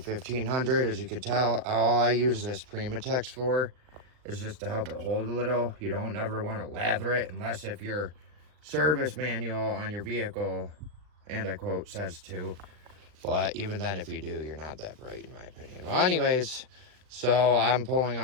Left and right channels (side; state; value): left; late; 39 ms